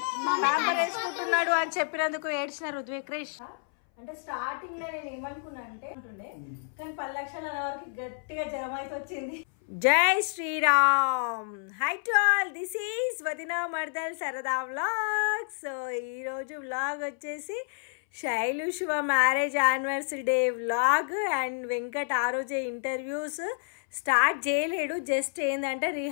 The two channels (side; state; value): right; silent; 58 dB below the other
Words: ప్యాంపర్ వేసుకుంటున్నాడు అని చెప్పినందుకు ఏడ్చిన రుద్విక్ క్రిష్. అంటే స్టార్టింగ్ లో నేను ఏమనుకున్నా అంటే ఉంటుండే, కానీ 10 లక్షల వరకు గట్టిగా జ్వరం అయితే వచ్చింది. జై Shriram. Hi to all, this is వదినా మర్దల్ సరదా వ్లాగ్. సో ఈరోజు వ్లాగ్ వచ్చేసి Shailu Shiva marriage anniversary day vlog. And Venkat ఆ రోజే ఇంటర్వ్యూస్ స్టార్ట్ చేయలేడు, జస్ట్ ఏంటంటే